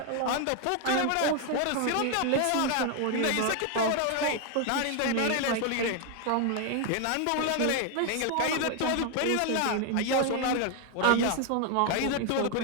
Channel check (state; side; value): different; both; correlation 0.01